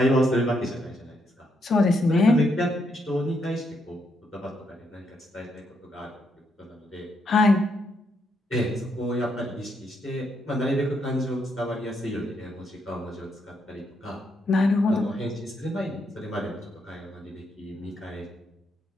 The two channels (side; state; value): both; normal; correlation 0.77